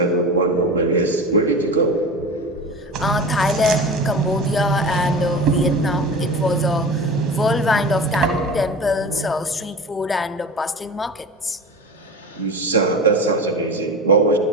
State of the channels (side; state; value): both; normal; correlation 0.31